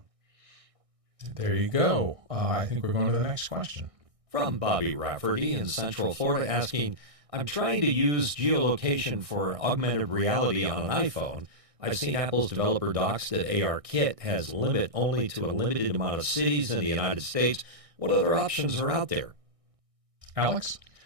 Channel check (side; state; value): left; late; 1.6 ms